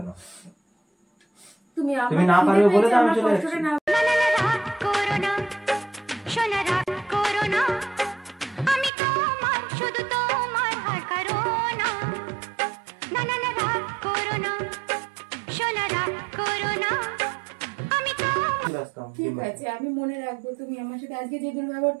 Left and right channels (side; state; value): left; drops out; at 8.9 s